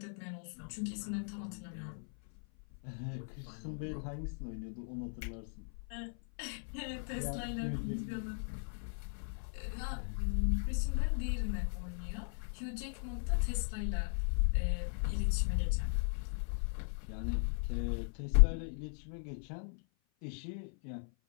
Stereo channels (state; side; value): silent; right; 53 dB below the other